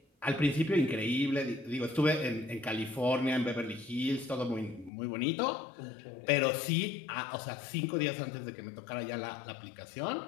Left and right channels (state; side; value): drops out; right; at 4.9 s